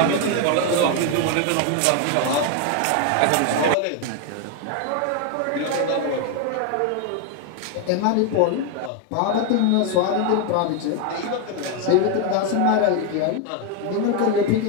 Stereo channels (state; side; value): different; both; correlation 0.01